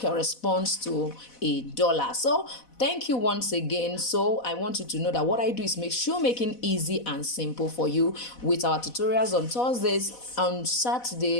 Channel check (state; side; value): late; right; 4.1 ms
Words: to $1. So thank you once again. So I want you to know that what I do is make shoemaking easy and simple for you with our tutorials on Thursdays, on